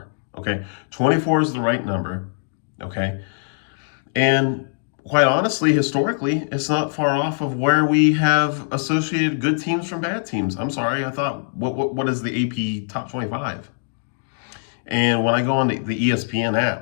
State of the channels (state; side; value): silent; right; digital silence